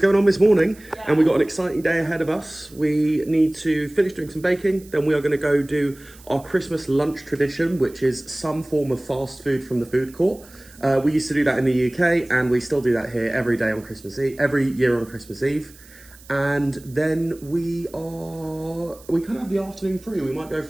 on this morning, and we've got an exciting day ahead of us. We need to finish doing some baking, then we are going to go do our Christmas lunch tradition, which is some form of fast food from the food court. We used to do that in the UK, and we still do that here every day on Christmas Eve, every year on Christmas Eve. And then we kind of have the afternoon free. We might go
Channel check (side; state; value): right; noise; hiss, 23 dB below the sound